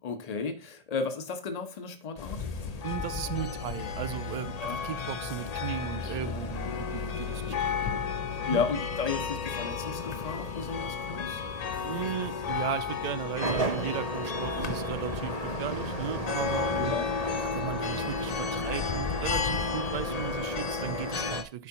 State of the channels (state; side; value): late; right; 1.8 ms